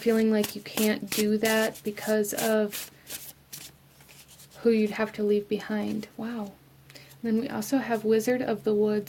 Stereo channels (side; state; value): both; identical; correlation 1.00